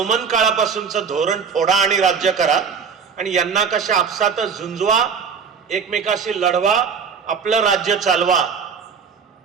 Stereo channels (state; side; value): quieter; left; 6.2 dB